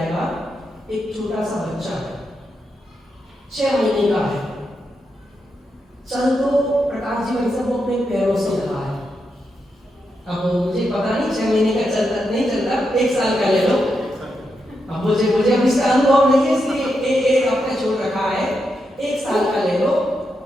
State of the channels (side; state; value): both; normal; correlation 0.84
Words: एक छोटा सा बच्चा है, 6 महीने का है, चल तो प्रकाश जी भाई साहब वो अपने पैरों से रहा है। अब मुझे पता नहीं 6 महीने का चलता नहीं चलता, 1 साल का ले लो। अब मुझे अब इसका अनुभव नहीं है, इसलिए आपने छोड़ रखा है। 1 साल का ले लो।